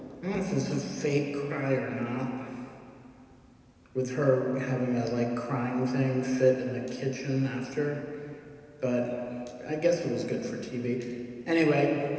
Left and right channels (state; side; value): identical; both; correlation 1.00